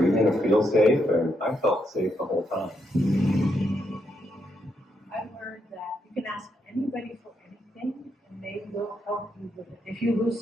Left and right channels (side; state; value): both; normal; correlation 0.79